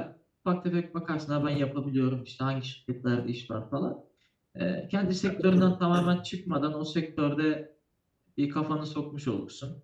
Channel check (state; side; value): identical; both; correlation 1.00